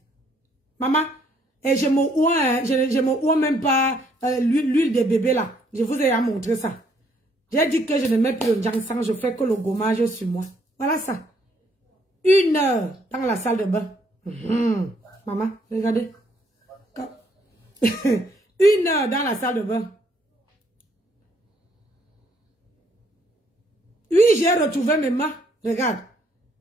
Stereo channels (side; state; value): both; normal; correlation 0.68